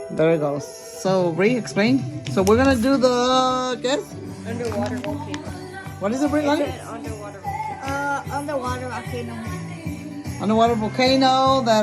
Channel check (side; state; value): both; identical; correlation 1.00